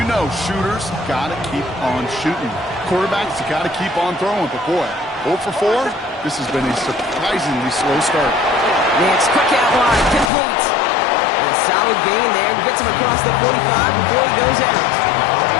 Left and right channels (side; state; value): right; drops out; at 10.3 s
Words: know shooters got to keep on shooting. Quarterbacks got to keep on throwing, but boy, 0 for 4, this has been a surprisingly slow start. Nix, quick out wide, complete. And a solid gain there. Gets him across the 45 before he goes out.